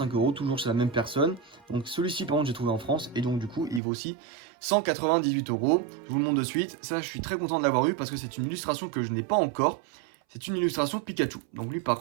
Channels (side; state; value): left; drops out; at 3.8 s